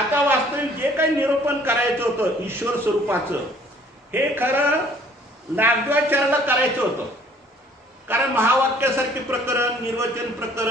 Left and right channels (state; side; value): normal; both; correlation 0.57